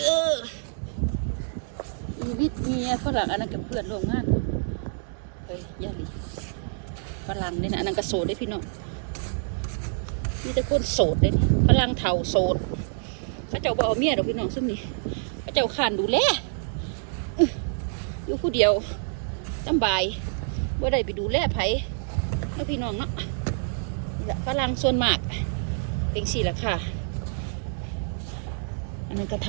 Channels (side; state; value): left; silent; digital silence